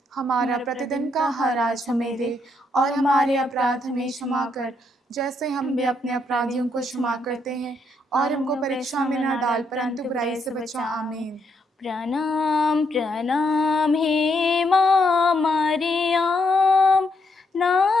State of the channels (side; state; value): both; normal; correlation 0.76